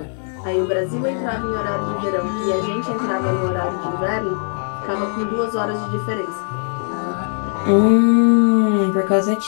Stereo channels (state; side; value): silent; right; 55 dB below the other